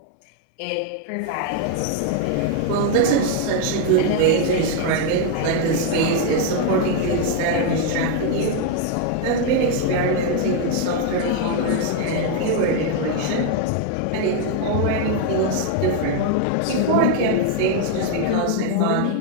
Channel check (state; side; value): different; both; correlation 0.01